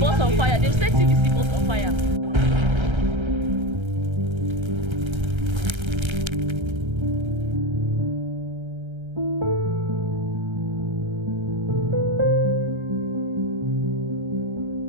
on fire. They've set TVC bus on fire.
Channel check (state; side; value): late; left; 1.3 ms